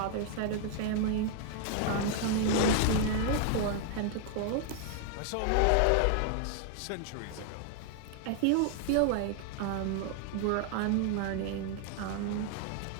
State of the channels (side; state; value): both; different; correlation 0.00